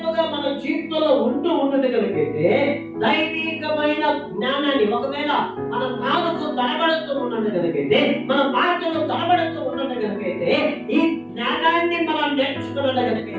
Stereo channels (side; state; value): both; identical; correlation 1.00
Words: మన జీవితంలో ఉన్నది కనుకైతే దైవికమైన జ్ఞానాన్ని, ఒకవేళ మన నాలుగు తడబడుతూ ఉన్నది కనుకైతే, మన మాటలు తడబడుతూ ఉన్నది కనుకైతే, ఈ జ్ఞానాన్ని మనం నేర్చుకున్నది